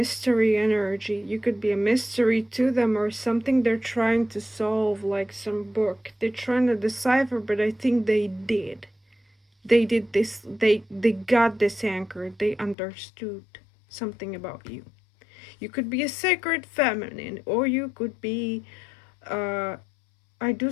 energy, you could be a mystery to them or something they're trying to solve, like some book they're trying to decipher. But I think they did. They did this. They got this anchor. They understood something about you. You could be a sacred feminine, or you could be. I do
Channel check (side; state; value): right; drops out; at 12.8 s